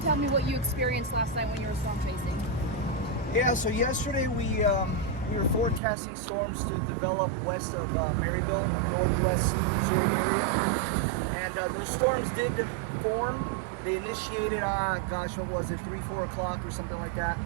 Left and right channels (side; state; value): left; drops out; at 5.8 s